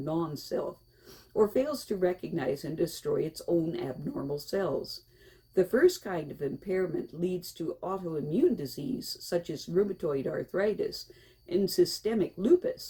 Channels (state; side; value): identical; both; correlation 1.00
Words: non-self, or fails to recognize and destroy its own abnormal cells. The first kind of impairment leads to autoimmune disease, such as rheumatoid arthritis and systemic